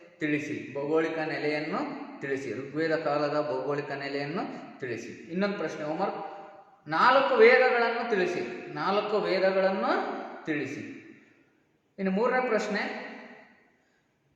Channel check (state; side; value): identical; both; correlation 1.00